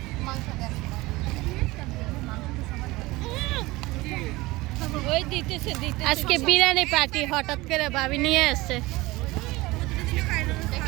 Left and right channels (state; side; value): quieter; left; 20.8 dB